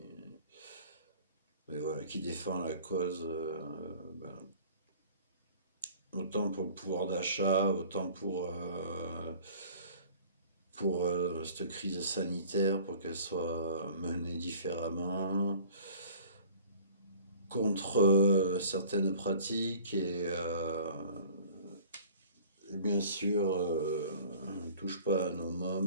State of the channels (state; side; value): inverted; both; correlation -0.47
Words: mais voilà, qui défend la cause, ben, autant pour le pouvoir d'achat, autant pour cette crise sanitaire, pour qu'elle soit menée différemment, contre certaines pratiques et bien sûr, ne touche pas à nos